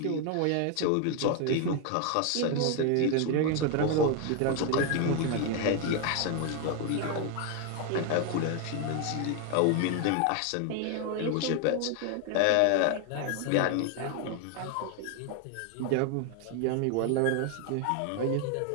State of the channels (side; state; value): both; different; correlation 0.01